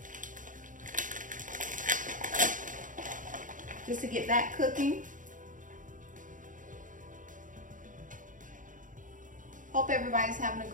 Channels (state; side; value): late; left; 0.38 ms